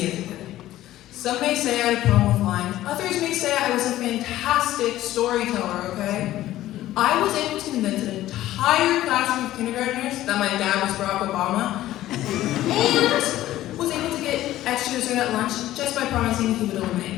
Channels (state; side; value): quieter; right; 14.5 dB